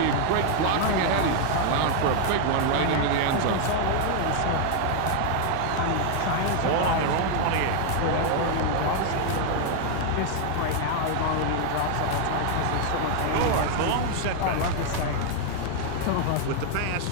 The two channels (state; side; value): different; both; correlation 0.00